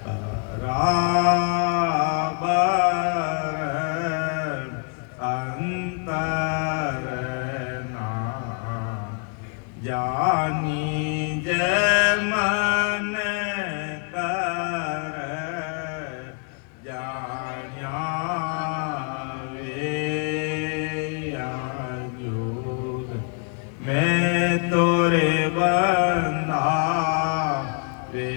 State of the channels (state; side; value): quieter; right; 39.3 dB